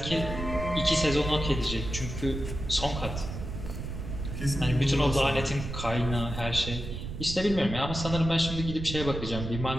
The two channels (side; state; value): right; noise; rumble, 6 dB below the sound